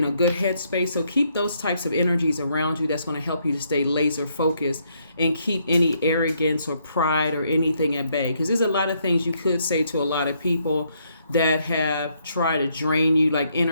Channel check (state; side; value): inverted; both; correlation -0.73